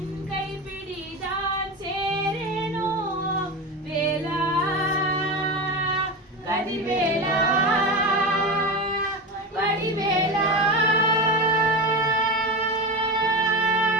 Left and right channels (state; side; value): normal; both; correlation 0.22